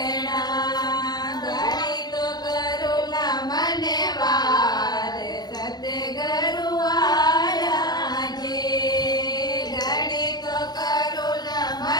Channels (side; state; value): right; late; 0.20 ms